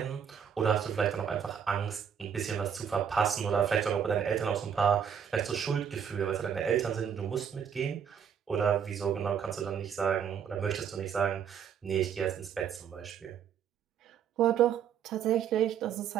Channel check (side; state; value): left; quieter; 8.0 dB